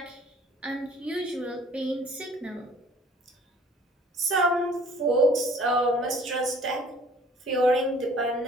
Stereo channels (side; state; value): both; normal; correlation 0.53